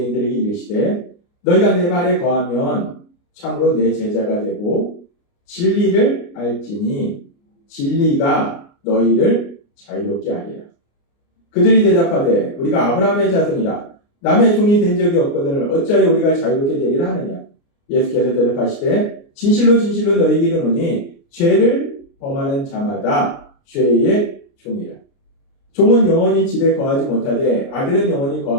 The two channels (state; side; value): late; right; 29 ms